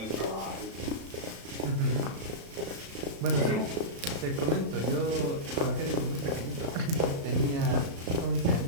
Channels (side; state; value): left; late; 36 ms